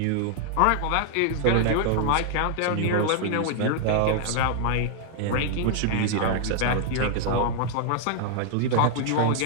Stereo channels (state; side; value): different; both; correlation 0.00